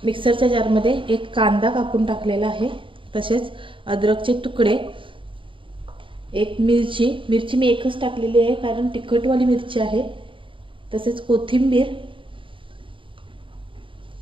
मिक्सरच्या जारमध्ये एक कांदा कापून टाकलेला आहे, तसेच अद्रकचे तुकडे, एक मिरची मी एकच टाकलेली आहे कारण तिखटवाली मिरची आहे, तसेच कोथिंबीर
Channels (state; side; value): late; left; 0.25 ms